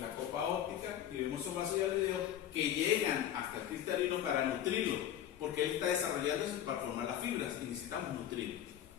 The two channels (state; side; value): quieter; right; 10.9 dB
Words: copa óptica, y vemos esos vasos hialoideos que llegan hasta el cristalino para nutrirlo, porque él está desarrollándose para formar las fibras y necesitamos nutrirlo.